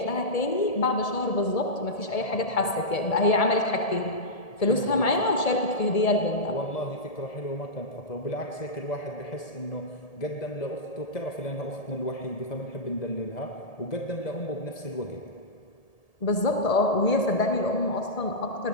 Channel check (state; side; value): late; right; 1.7 ms